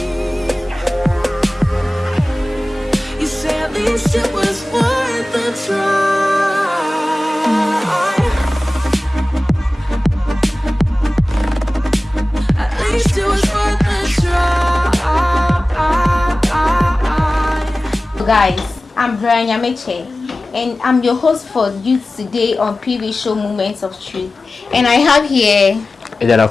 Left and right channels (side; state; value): both; normal; correlation 0.96